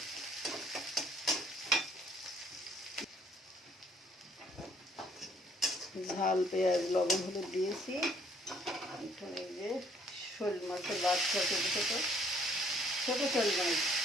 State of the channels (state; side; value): normal; both; correlation 0.62